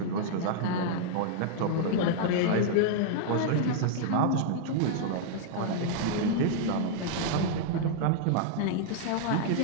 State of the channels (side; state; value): both; different; correlation -0.01